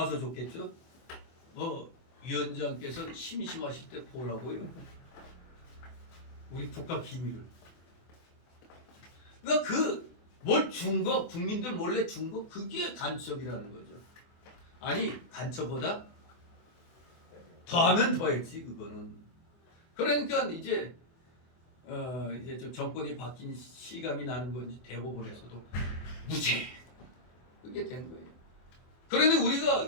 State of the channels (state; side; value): late; right; 24 ms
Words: 줬겠죠. 위원장께서 심심하실 때 보라고요. 우리 국가 기밀을. 그러니까 뭘 준 거, 국민들 몰래 준 거, 그게 간첩이라는 거죠. 아니, 간첩보다 더하면 더했지, 그거는. 그러니까 이제 좀 정권이 바뀐 실감이 나는 건지 대법원에서도 무죄. 그게 된 거예요. 그런데